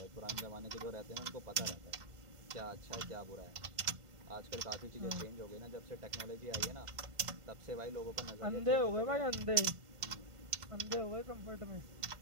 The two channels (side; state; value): left; late; 1.5 ms